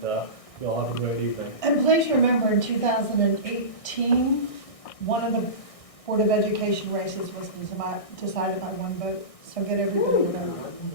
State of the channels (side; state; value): right; late; 1.6 ms